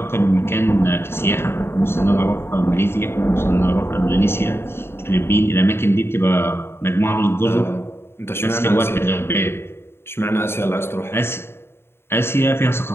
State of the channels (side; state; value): right; late; 0.11 ms